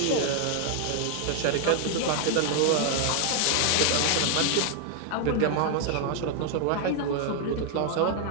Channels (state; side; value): different; both; correlation 0.00